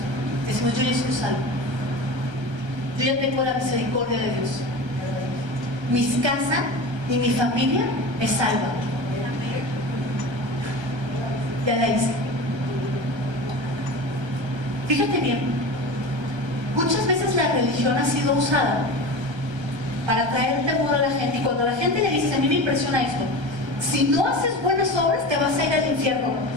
Decimos, yo ya soy salvo, yo ya tengo la misericordia de Dios, mi casa y mi familia es salva, ya la hice. Fíjate bien, muchas veces la religión ha sido usada para traer temor a la gente, y cuando la gente le dice, a mí me impresiona esto, si no haces buenas obras te vas a ir al infierno.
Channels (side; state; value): left; late; 1.3 ms